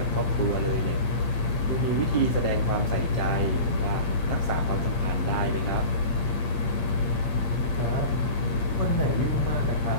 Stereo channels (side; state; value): right; late; 8.6 ms